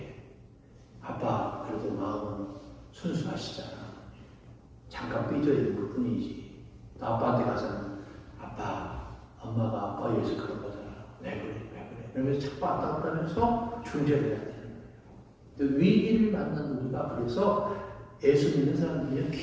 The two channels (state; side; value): identical; both; correlation 1.00